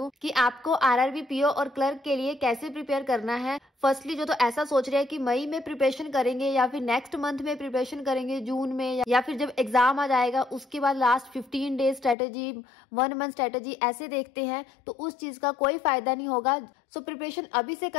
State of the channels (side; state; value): right; drops out; at 12.2 s